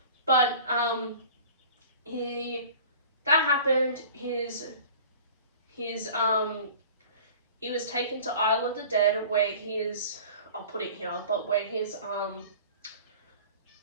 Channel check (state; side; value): inverted; both; correlation -0.43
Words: But, that happened. He was taken to Isle of the Dead, where I'll put it here, but where his,